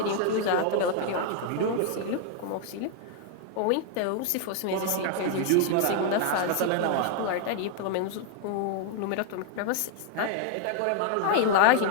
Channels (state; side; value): different; both; correlation 0.00